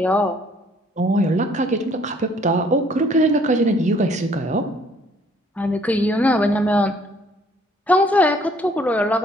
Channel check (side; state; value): both; normal; correlation 0.61